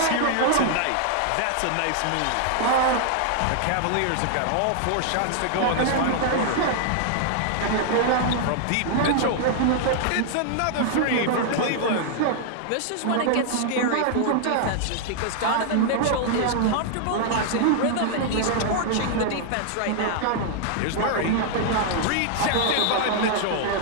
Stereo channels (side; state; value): both; different; correlation -0.01